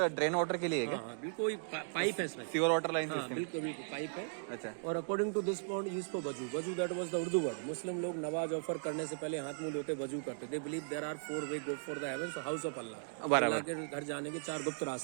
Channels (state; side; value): silent; left; digital silence